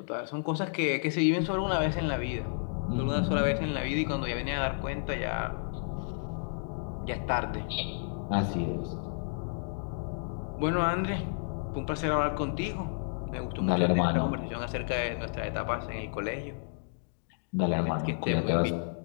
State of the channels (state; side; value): silent; right; digital silence